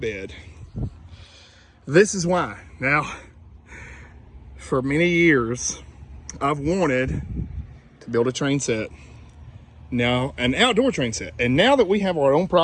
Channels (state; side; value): identical; both; correlation 1.00